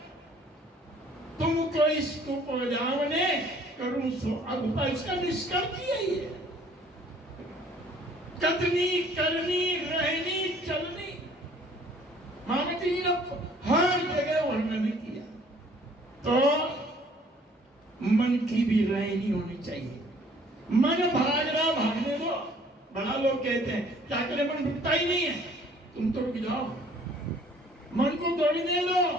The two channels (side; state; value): both; normal; correlation 0.57